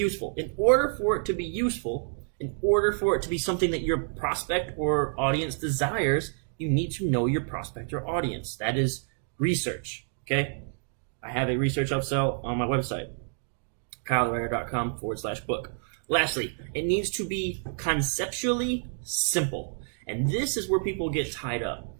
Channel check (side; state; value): left; silent; 59 dB below the other